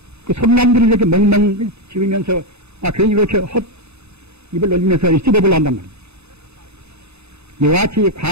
그 손남들이 이렇게 멍멍 지으면서 괜히 이렇게 헛 입을 놀리면서 씹어보려 한단 말입니다. 이와 같이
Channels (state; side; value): late; left; 0.80 ms